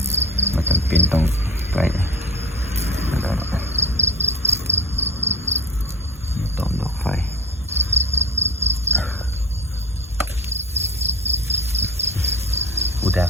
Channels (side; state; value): both; normal; correlation 0.41